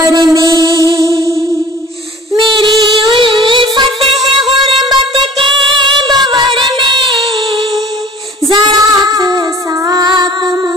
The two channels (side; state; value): both; normal; correlation 0.48